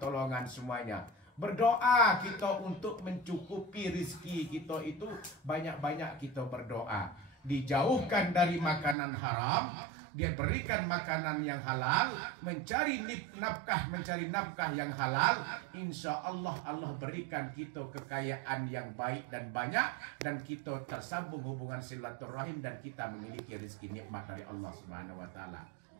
semuanya. Berdoa kita untuk mencukupi rizki kita itu, banyak-banyak kita berdoa. Dijauhkan dari makanan haram, dia berikan makanan yang halal, mencari nafkah yang halal. Insya Allah, Allah berikan kita kekayaan yang baik dan banyak, dan kita tersambung hubungan silaturahim, dan kita memiliki rezeki nikmat dari Allah Subhanahu wa taala.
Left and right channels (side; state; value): left; drops out; at 9.0 s